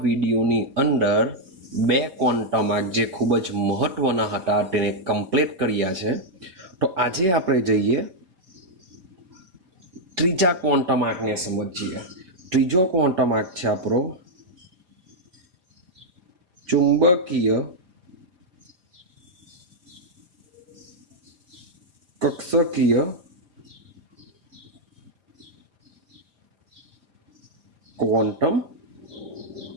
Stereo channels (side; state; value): left; late; 4.5 ms